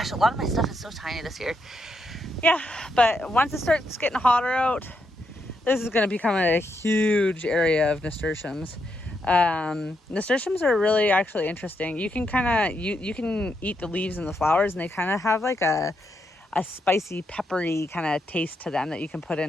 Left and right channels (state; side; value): normal; both; correlation 0.80